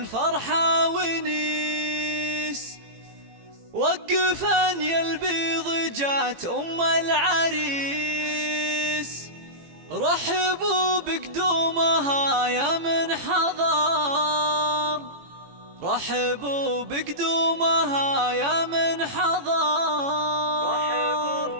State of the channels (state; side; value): late; left; 18 ms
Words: ونيس. وقفا يا البيض جات أم العريس، رحبوا بقدومها يا من حضر، رحبوا بقدومها يا من حضر،